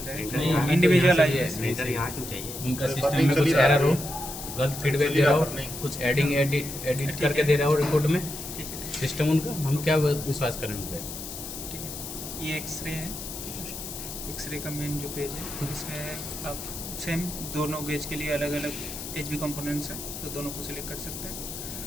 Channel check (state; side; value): noise; left; hiss, 9 dB below the sound